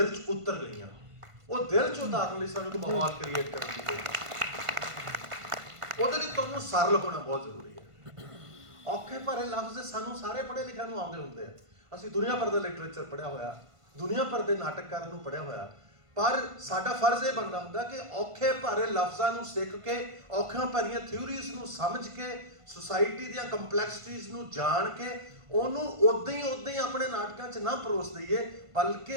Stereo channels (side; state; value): left; late; 1.5 ms